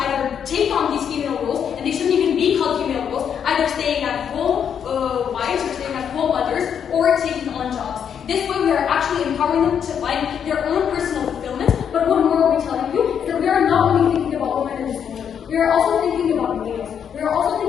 take on these female roles, and they shouldn't even be called female roles, either staying at home wives or staying at home mothers, or taking on jobs. This way, we are actually empowering them to find their own personal fulfillment. But what more are we telling you is that we are not only thinking about women in this moment. We are also thinking about males. We are also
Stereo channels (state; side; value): quieter; right; 8.0 dB